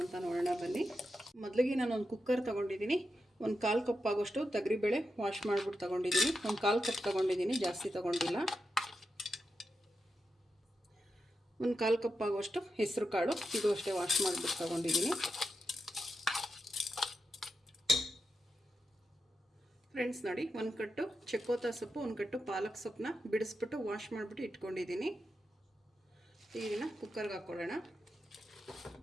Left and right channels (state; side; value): normal; both; correlation 0.88